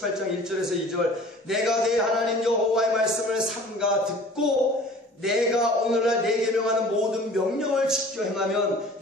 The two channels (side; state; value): both; normal; correlation 0.46